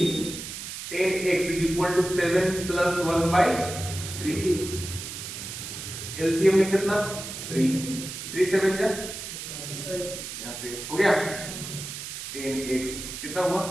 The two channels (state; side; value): noise; right; hiss, 8 dB below the sound